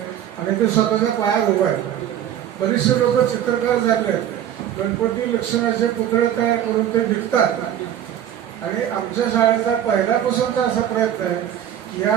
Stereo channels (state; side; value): quieter; left; 10.6 dB